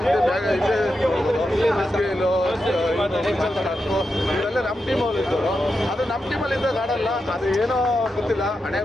ಇವರೆಲ್ಲ ನಮ್ಮ ಟೀಮಲ್ಲಿ ಇದ್ದವರು. ಅದು ನಮ್ಮ ಟೀಮಲ್ಲಿ ಇದ್ದಾಗ ಆಡಲ್ಲ, ಅದು ಏನೋ ಗೊತ್ತಿಲ್ಲ, ಹಣೆ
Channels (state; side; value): normal; both; correlation 0.88